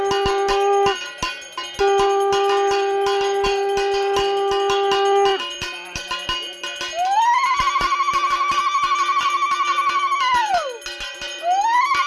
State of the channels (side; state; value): both; identical; correlation 1.00